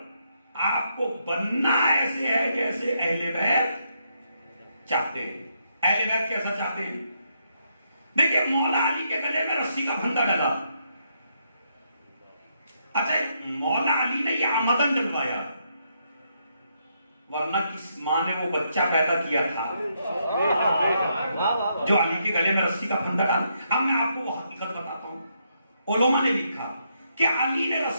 آپ کو بننا ایسے ہے جیسے اہل بیت چاہتے ہیں۔ اہل بیت کیسا چاہتے ہیں؟ دیکھیں مولا علی کے گلے میں رسی کا پھندا ڈلا، اچھا مولا علی نے یہ آمدن ڈلوایا، ورنہ کس ماں نے وہ بچہ پیدا کیا تھا جو علی کے گلے میں رسی کا پھندا ڈالا؟ اب میں آپ کو وہ حقیقت بتاتا ہوں، علماء نے لکھا کہ علی نے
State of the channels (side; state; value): both; inverted; correlation -0.77